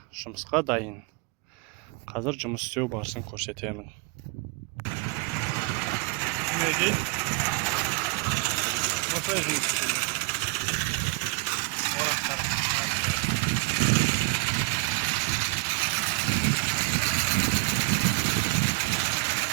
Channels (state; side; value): quieter; left; 25.9 dB